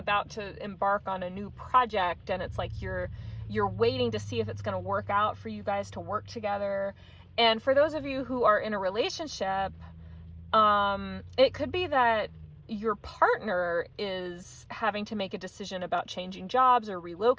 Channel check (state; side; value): identical; both; correlation 1.00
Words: to embark on a new project, and it's like you're waiting to see if it's going to work out for you guys to work together. And for those of you who are in a relationship, it could be that your partner is having to make a decision about changing jobs or